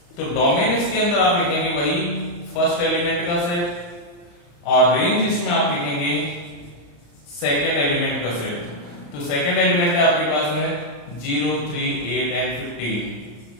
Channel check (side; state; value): right; late; 35 ms